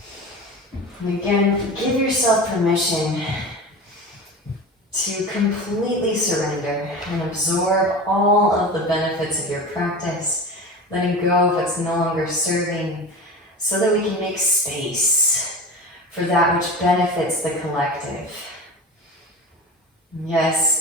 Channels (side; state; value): both; normal; correlation 0.31